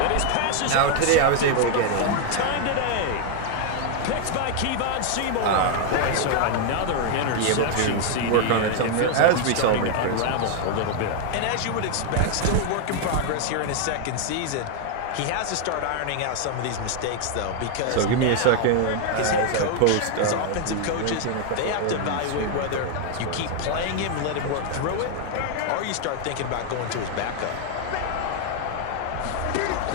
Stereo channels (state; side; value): different; both; correlation 0.00